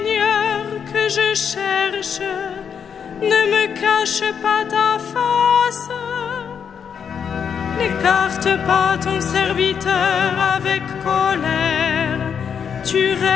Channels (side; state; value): right; quieter; 7.3 dB